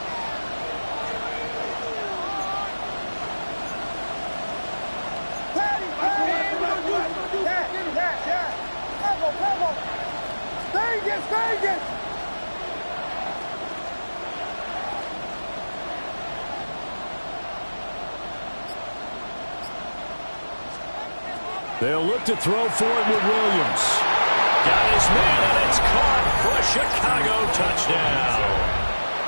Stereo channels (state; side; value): inverted; both; correlation -1.00